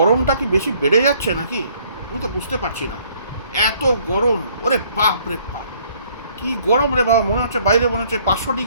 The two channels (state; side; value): inverted; both; correlation -0.61